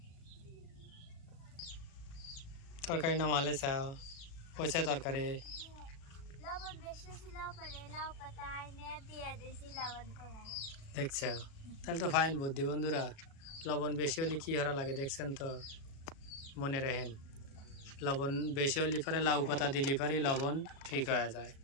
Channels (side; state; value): right; late; 36 ms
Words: তরকারি নামালে চাও হয়েছে তরকারি। লবণ বেশি ছিল পরে লাউ পাতায় নেট দিয়ে দিয়েছি লবণ কমে গেছে। দেখছ তাহলে তো ফাইন বুদ্ধি বন্ধুরা। লবণ বেশি হলে কি হরা লাগে দেখছেন তো, মনে রাখেন। লবণ বেশি হলে পরে লাউ পাতা দিলে পরে লবণ ঠিক হয়ে যায়,